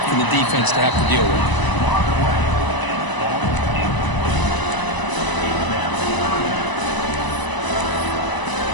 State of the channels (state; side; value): late; right; 1.0 ms